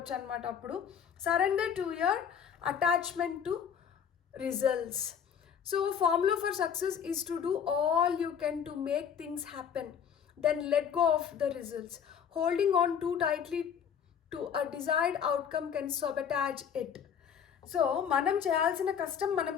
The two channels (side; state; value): right; quieter; 7.8 dB